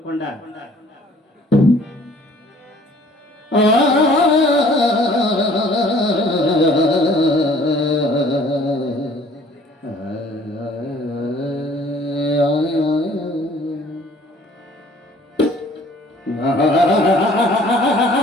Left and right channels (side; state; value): both; normal; correlation 0.55